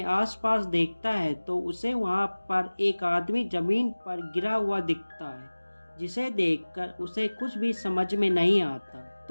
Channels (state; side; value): inverted; both; correlation -1.00